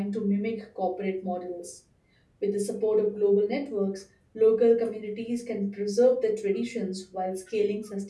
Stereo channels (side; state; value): both; identical; correlation 1.00